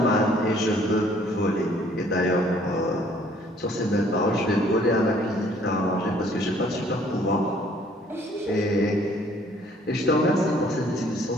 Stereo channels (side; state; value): both; normal; correlation 0.60